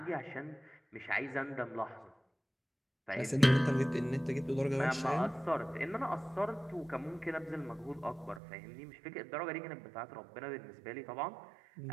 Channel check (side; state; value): left; drops out; at 8.4 s